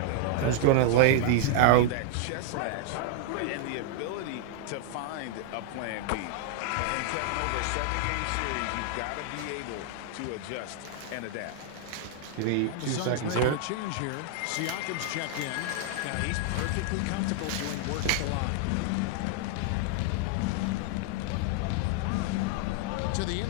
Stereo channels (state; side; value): different; both; correlation -0.01